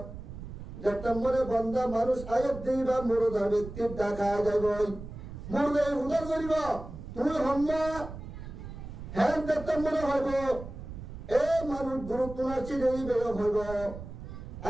যেতমরে বন্ধা মানুষ আয়াত দিবা মুরদা ব্যক্তির দেখা যাইব মুরদা উদার করিব তুই হম্মা হ্যাঁ যেতমরে হইব এ মানুষ গুরুত্ব নাচি দেই বের হইব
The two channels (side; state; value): right; noise; rumble, 11 dB below the sound